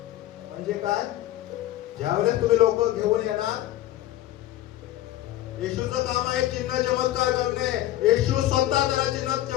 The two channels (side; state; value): right; quieter; 14.5 dB